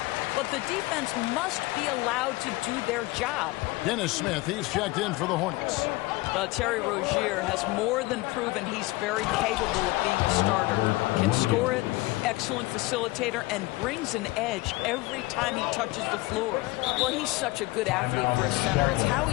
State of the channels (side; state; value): right; quieter; 21.2 dB